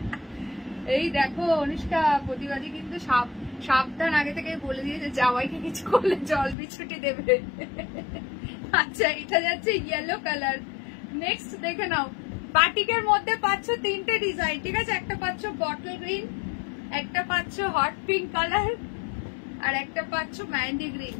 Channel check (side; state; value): right; drops out; at 6.6 s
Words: এই দেখো অনুষ্কা প্রতিবাদী কিন্তু সাবধান, আগে থেকে বলে দিয়েছে জামাইকে কিছু করলে জল বিছুটি দেবে। আচ্ছা এটা যাচ্ছে ইয়েলো কালার। নেক্সট দেখে নাও, বাটিকের মধ্যে পাচ্ছ তিনটে ডিজাইন, ঠিক আছে? একটা পাচ্ছ বটল গ্রিন, একটা পাচ্ছ হট পিঙ্ক কালার, আর একটা পাচ্ছ মেহেন্দি গ্রিন।